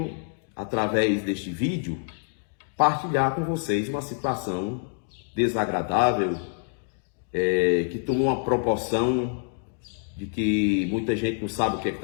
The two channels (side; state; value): right; silent; 61 dB below the other